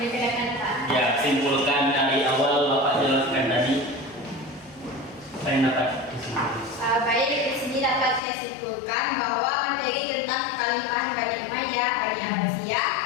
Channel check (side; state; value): right; drops out; at 8.2 s